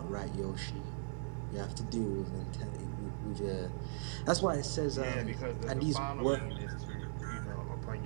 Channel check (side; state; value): left; silent; digital silence